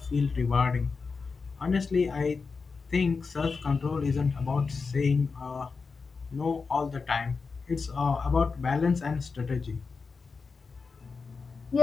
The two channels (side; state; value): right; quieter; 4.7 dB